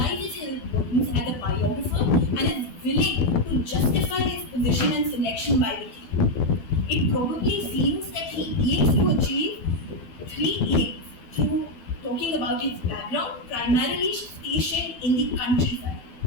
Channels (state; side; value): late; right; 12 ms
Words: his importance as a biographer and is willing to justify his position and selection by the king. It probably seems that he aims to achieve three aims through talking about his background, primarily stationed in the countryside.